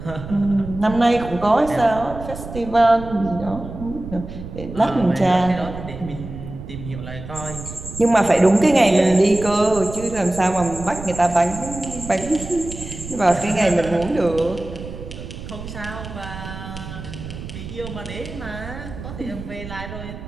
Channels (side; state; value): right; noise; rumble, 11 dB below the sound